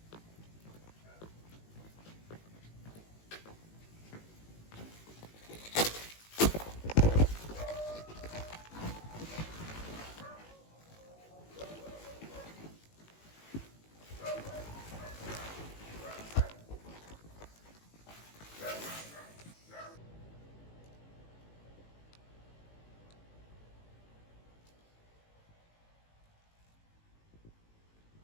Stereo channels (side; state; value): right; late; 18 ms